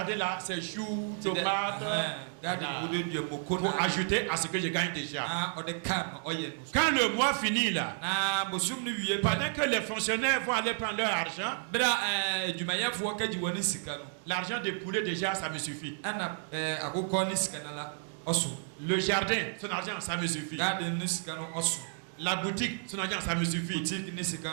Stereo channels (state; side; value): silent; left; 57 dB below the other